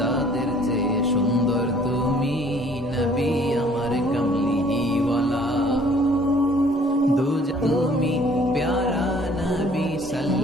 চেয়ে সুন্দর তুমি নবী আমার কামলিওয়ালা, তুমি প্যারা নবী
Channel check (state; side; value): normal; both; correlation 0.57